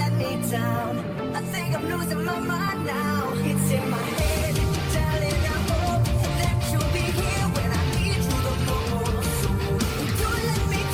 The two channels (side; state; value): both; identical; correlation 1.00